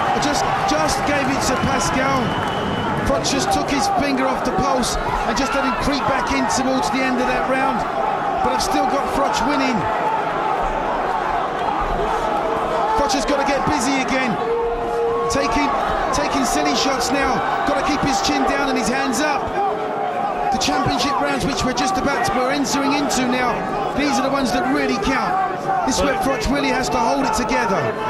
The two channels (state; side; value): identical; both; correlation 1.00